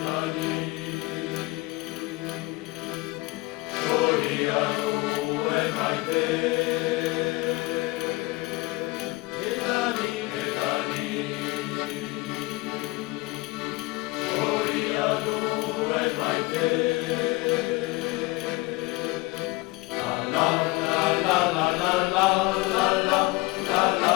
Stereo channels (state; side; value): quieter; right; 22.9 dB